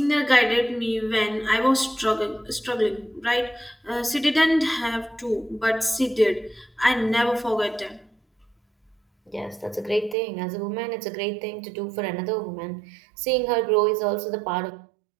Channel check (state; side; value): drops out; left; at 10.2 s